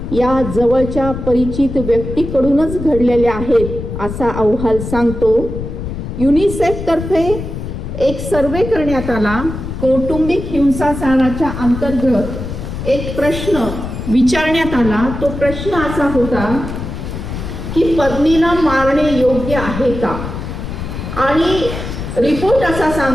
या जवळच्या परिचित व्यक्तीकडूनच घडलेल्या आहेत असा अहवाल सांगतो. युनिसेफ तर्फे एक सर्वे करण्यात आला. कौटुंबिक हिंसाचाराच्या अंतर्गत एक प्रश्न विचारण्यात आला. तो प्रश्न असा होता की पत्नीला मारणे योग्य आहे का? आणि रिपोर्ट असा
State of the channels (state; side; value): noise; left; rumble, 7 dB below the sound